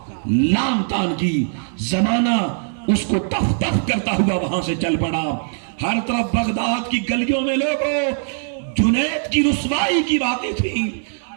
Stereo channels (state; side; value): silent; left; digital silence